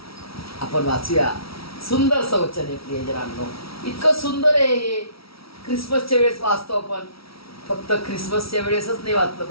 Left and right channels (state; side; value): late; right; 0.75 ms